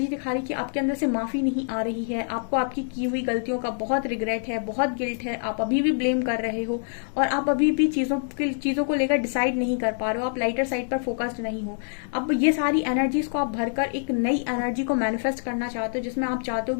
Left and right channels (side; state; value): right; silent; digital silence